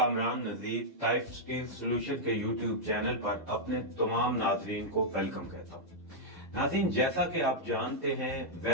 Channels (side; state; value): both; normal; correlation -0.06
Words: नज़ीर टाइप स्टील सोल्यूशन के यूट्यूब चैनल पर अपने तमाम नाज़रीन को वेलकम कहता हूँ। नाज़रीन, जैसा कि आप जानते हैं,